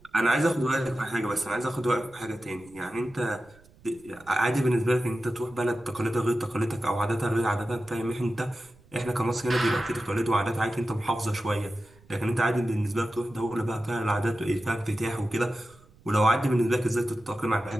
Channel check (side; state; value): right; noise; rumble, 27 dB below the sound